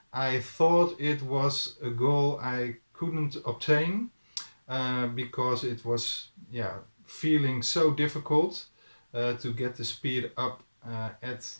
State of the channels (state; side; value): inverted; both; correlation -1.00